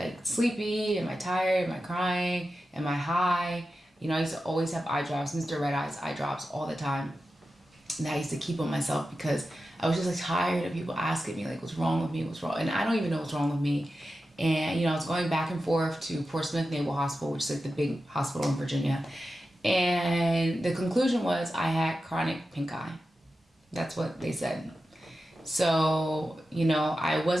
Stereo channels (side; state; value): both; normal; correlation 0.92